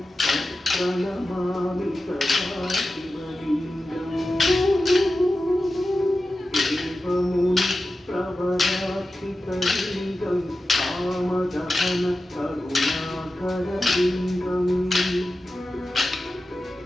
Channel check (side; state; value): both; normal; correlation 0.93